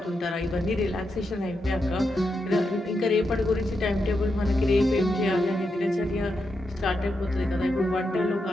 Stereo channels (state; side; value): normal; both; correlation 0.85